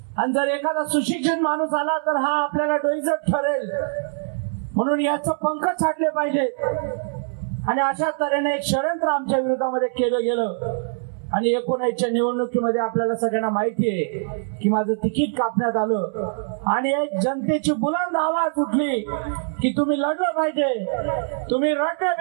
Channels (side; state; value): left; silent; 63 dB below the other